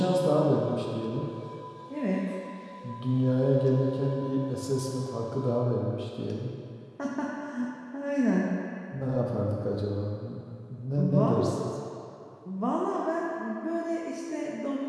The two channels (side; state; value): both; identical; correlation 1.00